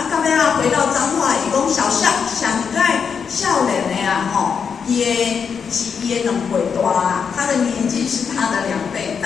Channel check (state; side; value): quieter; right; 6.5 dB